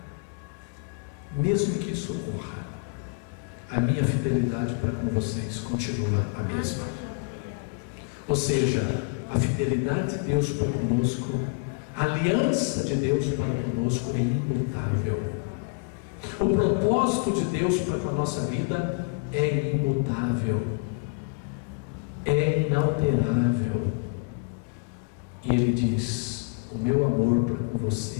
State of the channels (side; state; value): right; quieter; 33.7 dB